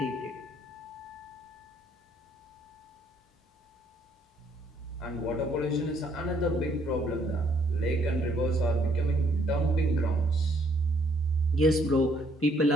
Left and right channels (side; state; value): both; normal; correlation 0.67